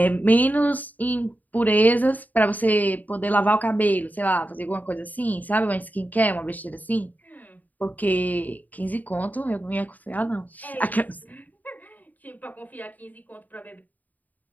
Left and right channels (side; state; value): right; late; 0.080 ms